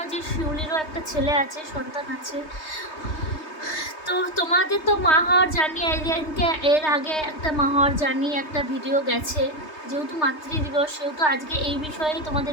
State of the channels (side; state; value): right; late; 3.2 ms